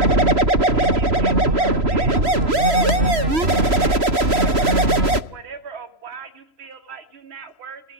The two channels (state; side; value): late; left; 3.0 ms